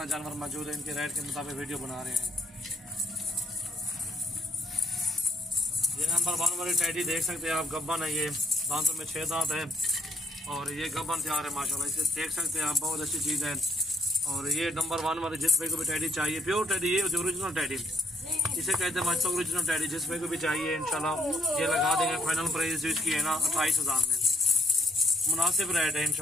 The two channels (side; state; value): both; normal; correlation 0.69